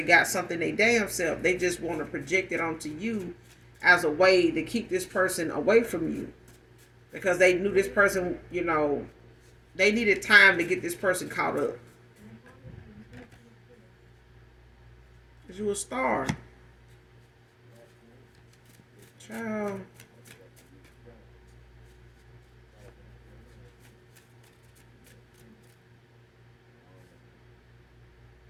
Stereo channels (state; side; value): identical; both; correlation 1.00